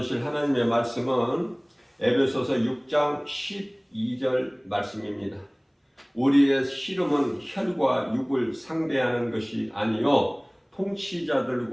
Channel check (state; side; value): identical; both; correlation 1.00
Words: 하나님의 말씀은 에베소서 6장 12절 말씀입니다. 우리의 씨름은 혈과 육을 상대하는 것이 아니요